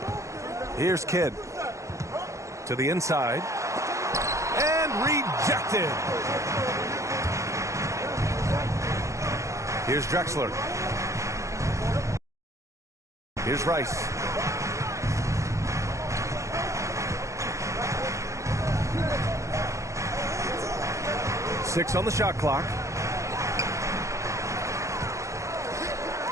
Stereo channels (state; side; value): late; left; 0.15 ms